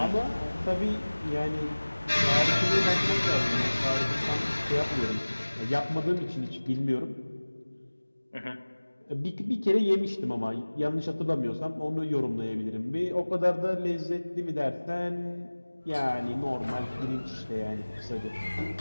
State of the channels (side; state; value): both; inverted; correlation -1.00